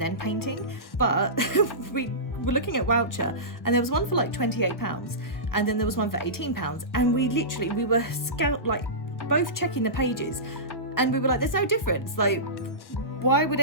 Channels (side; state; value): right; late; 1.1 ms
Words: then painting, but we were looking at Wowcher and there was one for like £28 and then there was one for £18, and we were both checking the pages and we were like, there's no difference. Like, why would